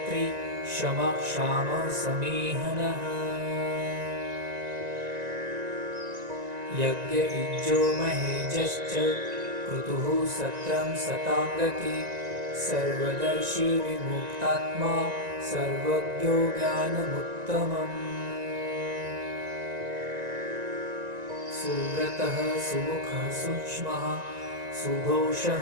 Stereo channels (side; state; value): left; late; 1.9 ms